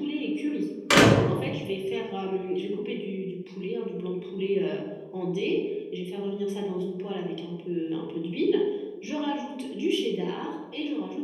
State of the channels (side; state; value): both; identical; correlation 1.00